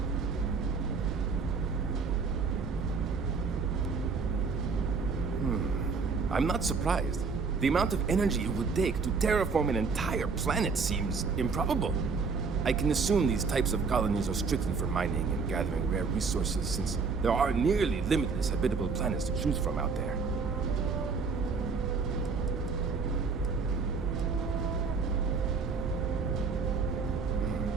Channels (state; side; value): quieter; left; 5.0 dB